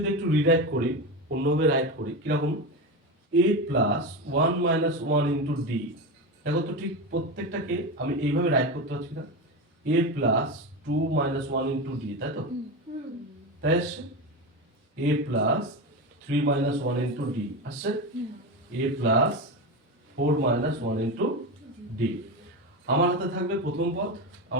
একটু রিরাইট করি, অন্যভাবে রাইট করি, কিরকম? এ প্লাস 1 মাইনাস 1 ইন্টু ডি। দেখো তো ঠিক প্রত্যেকটাকে আমি এইভাবে রাইট করতে পারছি না? এ প্লাস 2 মাইনাস 1 ইন্টু ডি, তাই তো? তাই আসছে a plus 3 minus 1 into D আসছে, a plus 4 minus 1 into D. আমার হাতে থাকবে প্রথম পদ,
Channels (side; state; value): both; normal; correlation 0.19